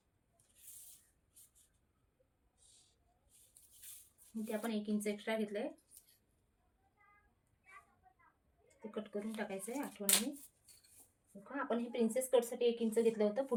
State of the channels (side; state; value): both; identical; correlation 1.00